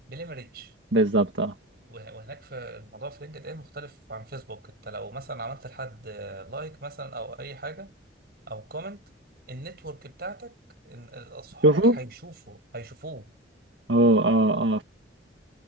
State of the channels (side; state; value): both; normal; correlation 0.19